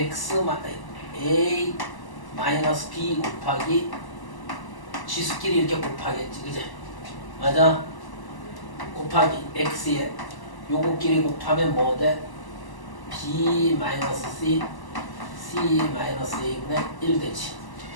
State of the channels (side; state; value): right; late; 1.0 ms